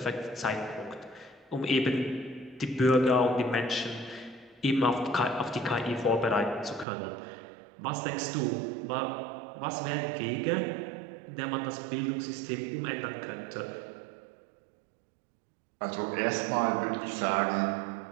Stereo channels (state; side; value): drops out; left; at 6.9 s